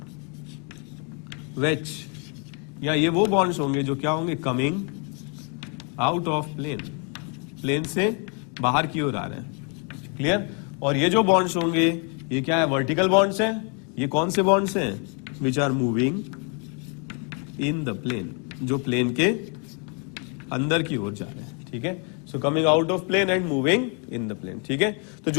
वेज, या ये वो बॉन्ड्स होंगे जो क्या होंगे, coming out of plane, plane से बाहर की ओर आ रहे हैं। क्लियर? और ये जो बॉन्ड्स होंगे ये क्या है, वर्टिकल बॉन्ड्स हैं। ये कौन से बॉन्ड्स हैं, which are moving in the plane, जो प्लेन के अंदर की ओर जा रहे हैं। ठीक है, so coming out of plane and moving in the plane. ठीक है, तो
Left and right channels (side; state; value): right; quieter; 37.6 dB